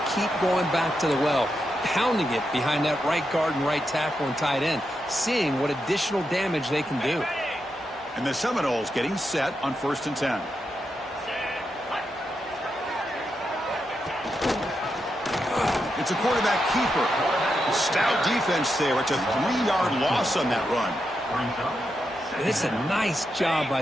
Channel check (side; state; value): both; normal; correlation 0.85